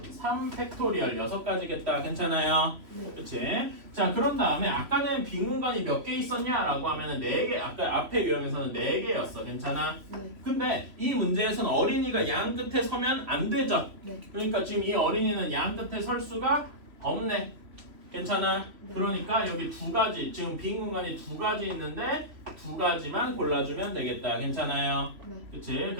3팩토리얼 6가지겠다. 괜찮아요? 네. 그치? 자, 그런 다음에 아까는 빈 공간이 몇 개 있었냐라고 하면은 4개, 아까 앞에 유형에서는 4개였어. 괜찮아? 네. 근데 이 문제에서는 어린이가 양 끝에 서면 안 되죠? 네. 그러니까 지금 이 어린이는 양 끝에 설 수가 없네. 괜찮아? 네. 그러니까 여기 두 가지 지금 빈 공간이 두 가지 있는데 두 가지만 골라주면 되겠다. 괜찮아요? 네. 그치?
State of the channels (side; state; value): left; late; 3.1 ms